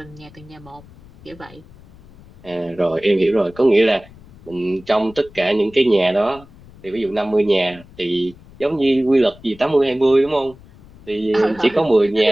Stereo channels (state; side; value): noise; left; rumble, 23 dB below the sound